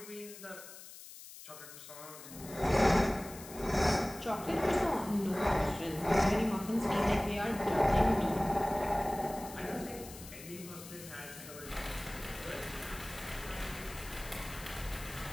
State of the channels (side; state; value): left; noise; hiss, 15 dB below the sound